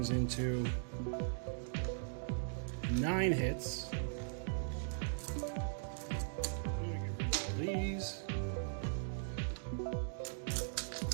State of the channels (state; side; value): silent; left; digital silence